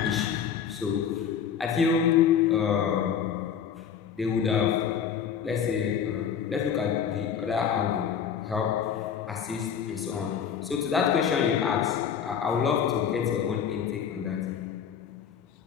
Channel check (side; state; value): right; quieter; 7.8 dB